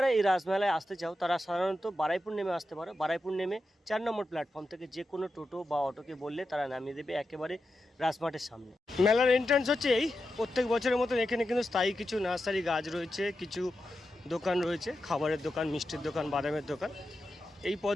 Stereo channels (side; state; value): both; normal; correlation 0.89